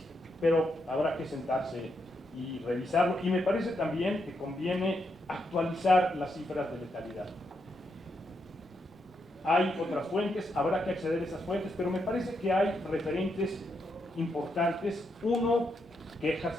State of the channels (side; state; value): both; normal; correlation 0.81